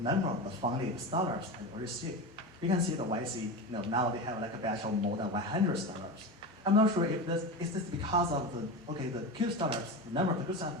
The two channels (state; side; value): normal; both; correlation 0.24